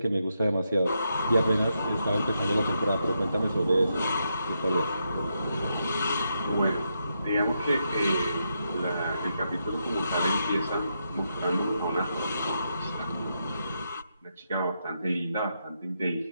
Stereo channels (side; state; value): both; inverted; correlation -0.82